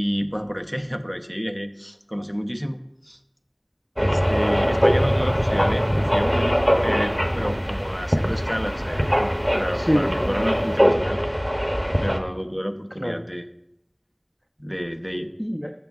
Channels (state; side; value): identical; both; correlation 1.00